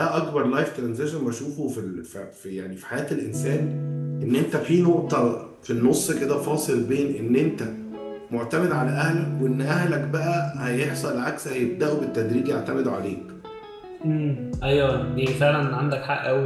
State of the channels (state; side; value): identical; both; correlation 1.00